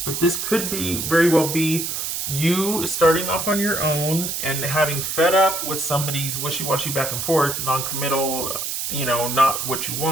But this could very well be you starting off on your own and having fed up with somebody's wishy-washy back and forth, non-committal, not what you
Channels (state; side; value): noise; right; hiss, 3 dB below the sound